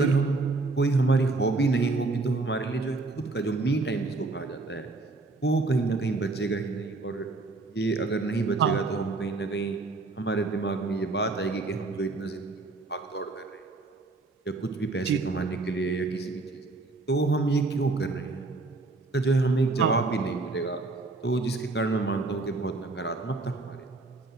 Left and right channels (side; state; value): left; quieter; 3.4 dB